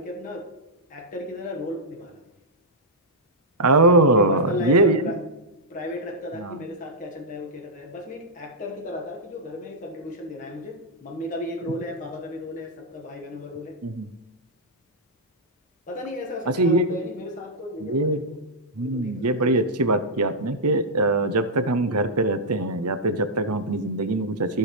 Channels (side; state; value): both; normal; correlation -0.08